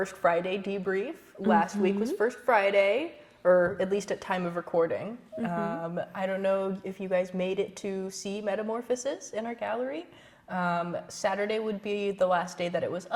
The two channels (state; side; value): identical; both; correlation 1.00